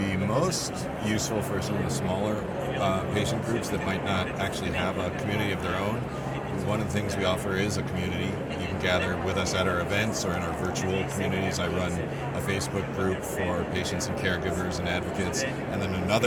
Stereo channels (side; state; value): both; identical; correlation 1.00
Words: most useful for some of the smaller patient groups that might not actually have a community of their own. One of the things we offer is a community. You can gather with us at our events or in our virtual communities. I run a Facebook group for patients and caregivers and advocates, and then